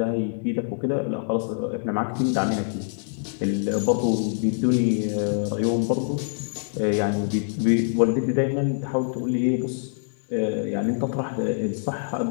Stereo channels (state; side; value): silent; right; 62 dB below the other